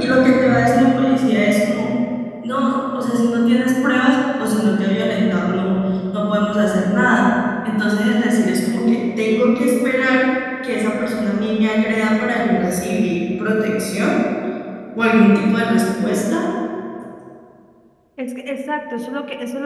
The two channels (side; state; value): both; identical; correlation 1.00